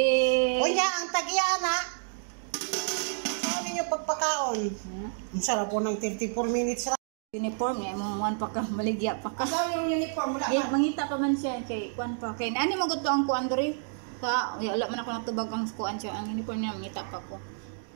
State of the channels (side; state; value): left; silent; digital silence